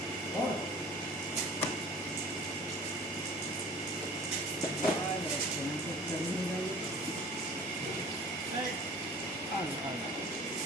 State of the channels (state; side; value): normal; both; correlation 0.45